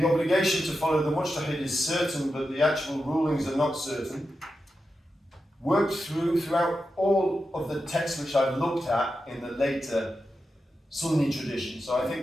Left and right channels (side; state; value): both; normal; correlation 0.89